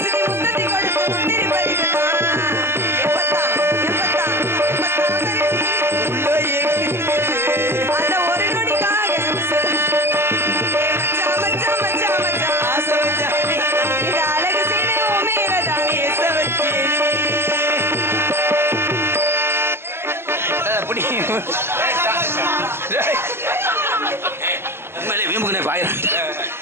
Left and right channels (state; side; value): late; left; 0.12 ms